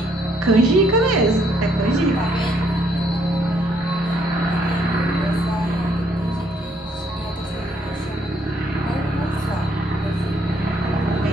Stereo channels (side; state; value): both; normal; correlation 0.69